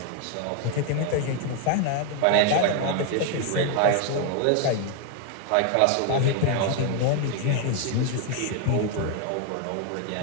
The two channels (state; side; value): different; both; correlation 0.00